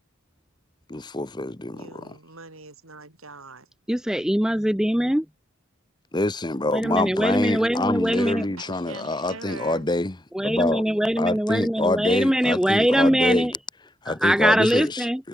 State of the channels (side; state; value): both; normal; correlation 0.83